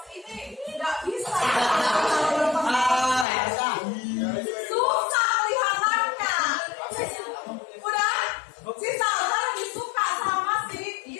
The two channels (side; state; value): right; drops out; at 3.2 s